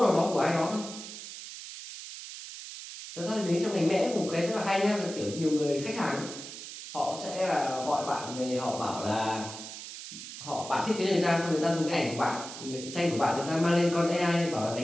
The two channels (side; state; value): right; noise; hiss, 11 dB below the sound